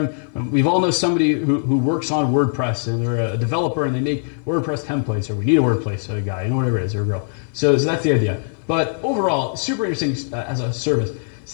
We've all know somebody who works on WordPress and they're a developer and they make WordPress templates, or we need a WordPress guy, whatever it is, or a girl. So that's the idea. But overall, super interesting as a service.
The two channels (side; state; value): right; silent; 56 dB below the other